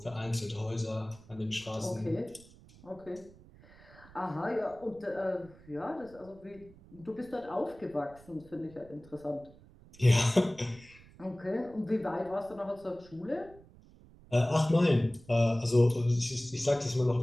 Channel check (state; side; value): noise; right; rumble, 23 dB below the sound